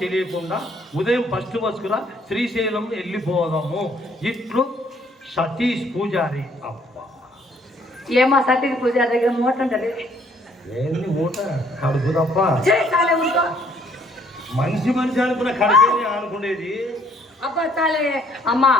తెలియకుండా ఉదయం ఫస్ట్ బస్సుకులా శ్రీశైలం వెళ్ళిపోదాము ఇట్లు సతీష్ పూజారి. అబ్బా ఏమో సతీష్ పూజ దగ్గర మూట ఉంటది. ఏంది మూట? కడుపు తప్ప చాలే ఉంటో మనిషి అనుకున్న కడుపే అనుకునేది. అబ్బా చాలే అమ్మా.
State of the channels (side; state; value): both; normal; correlation 0.64